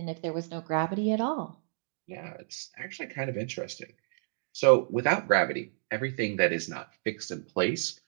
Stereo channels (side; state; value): left; silent; digital silence